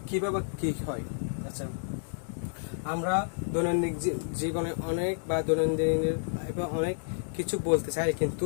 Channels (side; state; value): right; silent; digital silence